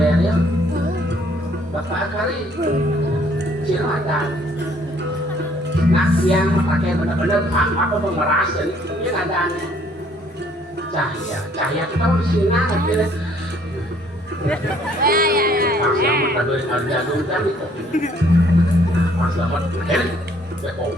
ya? Bapak kali silahkan. Nah yang pakai benar-benar apa pemeras dan ini ada cahaya kita harus sinar gitu. Pas selamat tadi harga dulu kan itu. Pas selamat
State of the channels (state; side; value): normal; both; correlation 0.62